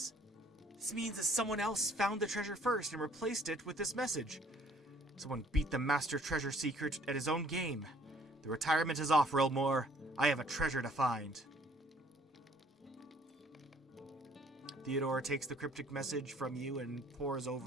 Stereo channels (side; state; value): both; normal; correlation 0.59